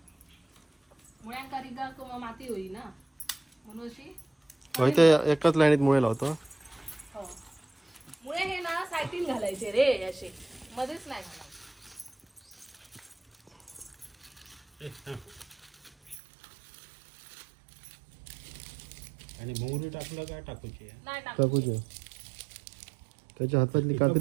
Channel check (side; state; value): left; drops out; at 16.2 s